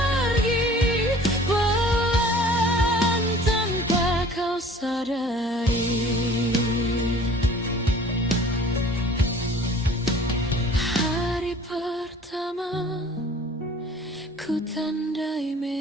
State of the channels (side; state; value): both; normal; correlation 0.49